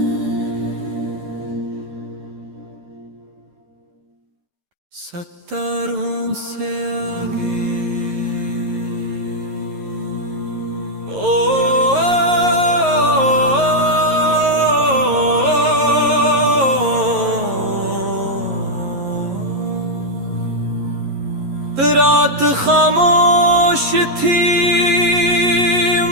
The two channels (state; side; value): late; left; 11 ms